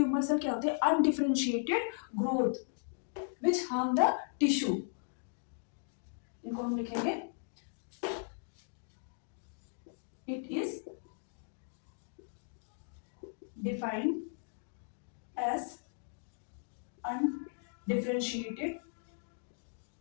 सेल क्या होते हैं, undifferentiated growth which harm the tissue. इनको हम लिखेंगे it is defined as undifferentiated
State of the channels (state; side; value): silent; right; digital silence